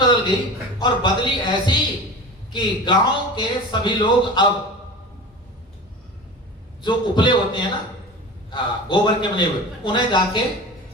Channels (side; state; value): both; normal; correlation 0.33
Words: गई और बदली ऐसी कि गांव के सभी लोग अब जो उपले होते हैं ना, गोबर के बने हुए, उन्हें जाके